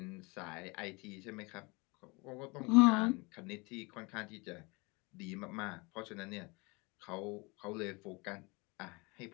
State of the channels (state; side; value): quieter; right; 27.2 dB